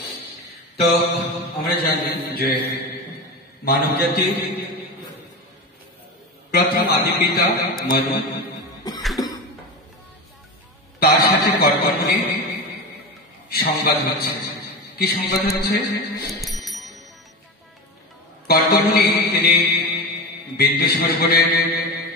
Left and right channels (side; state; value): both; normal; correlation 0.23